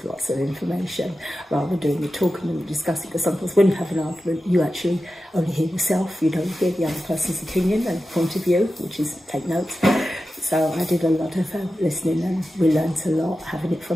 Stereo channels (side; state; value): both; normal; correlation 0.92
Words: information rather than doing the talking and discussing, because sometimes when you have an argument you actually only hear yourself, you don't hear the other person's opinion and point of view, which is take notes. So I did a lot of listening, and we learnt a lot having it